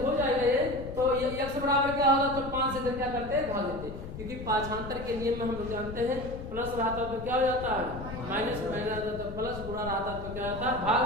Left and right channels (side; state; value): left; noise; rumble, 10 dB below the sound